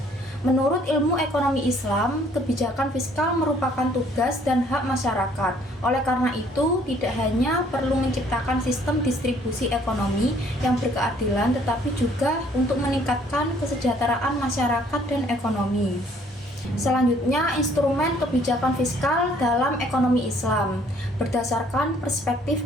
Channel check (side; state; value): both; normal; correlation 0.61